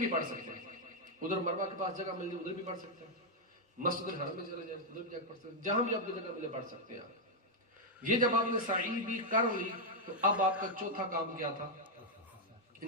پڑھ سکتے ہیں، ادھر مروہ کے پاس جگہ مل جائے ادھر بھی پڑھ سکتے ہیں، مسجد الحرم میں چلے جائیں ادھر بھی جا کے پڑھ سکتے ہیں، جہاں بھی آپ کو جگہ ملے پڑھ سکتے ہیں آپ۔ یہ جب آپ نے سعی بھی کر لی تو اب آپ کا چوتھا کام کیا تھا؟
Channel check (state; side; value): normal; both; correlation -0.01